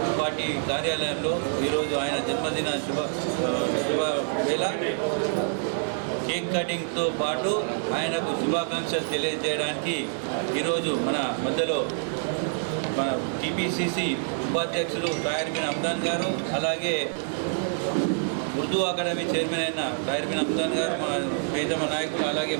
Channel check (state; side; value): silent; left; digital silence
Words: పార్టీ కార్యాలయంలో ఈరోజు ఆయన జన్మదిన శుభ వేళ కేక్ కటింగ్తో పాటు ఆయనకు శుభాకాంక్షలు తెలియజేయడానికి ఈరోజు మన మధ్యలో మన టీపీసీసీ ఉపాధ్యక్షులు తాహిర్ బిన్ హమ్దాన్ గారు, అలాగే ఉర్దూ అకాడమీ చైర్మన్ అయిన తాహిర్ బిన్ హమ్దాన్ గారు, మా ప్రియతమ నాయకులు, అలాగే